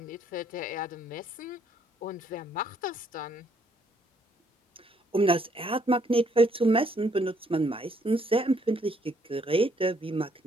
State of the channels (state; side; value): normal; both; correlation 0.68